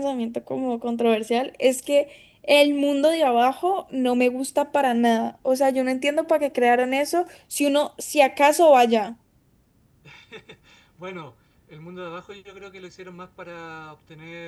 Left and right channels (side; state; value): both; identical; correlation 1.00